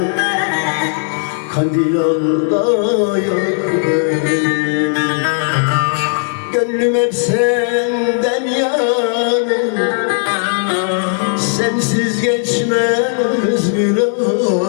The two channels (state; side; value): silent; right; 61 dB below the other